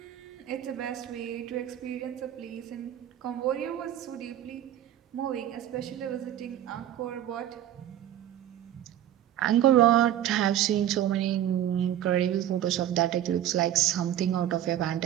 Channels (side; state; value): left; quieter; 11.7 dB